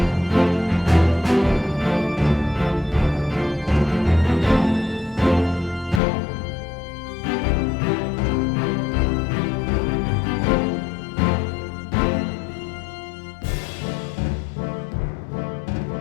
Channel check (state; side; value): drops out; right; at 6.0 s